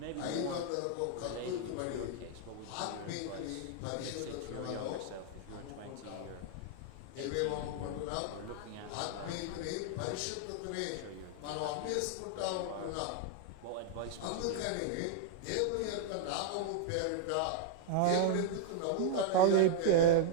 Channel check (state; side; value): different; both; correlation -0.01